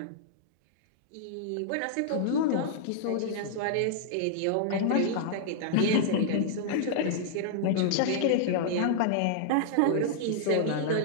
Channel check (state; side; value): different; both; correlation -0.01